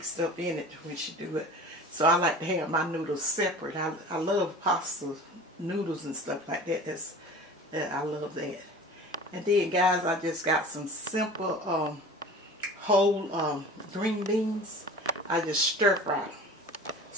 up in it when she do it. So I like to have my noodles separate. I love pasta noodles and stuff like that. I love that. And then guys, I just got some simple whole green beans. I just stir fry them.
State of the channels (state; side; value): normal; both; correlation 0.40